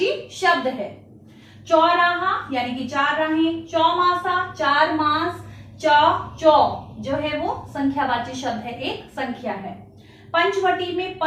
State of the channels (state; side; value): identical; both; correlation 1.00